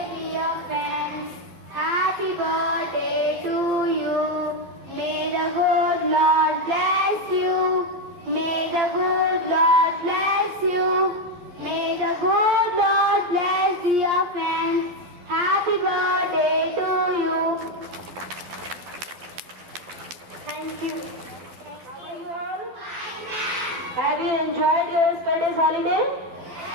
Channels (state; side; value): late; left; 12 ms